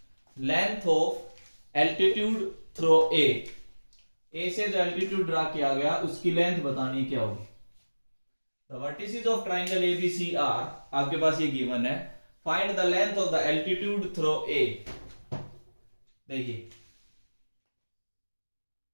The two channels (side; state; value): both; inverted; correlation -1.00